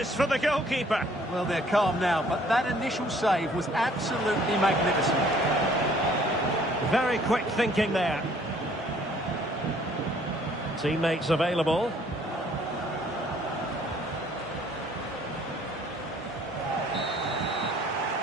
for the goalkeeper. Well, they're calm now, but that initial save was absolutely magnificent. Very quick thinking there. Teammates available.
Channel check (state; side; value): normal; both; correlation 0.59